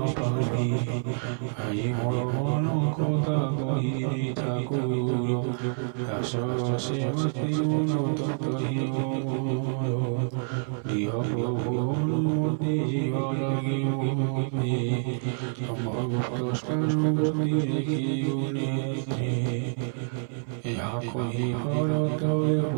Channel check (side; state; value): left; silent; 57 dB below the other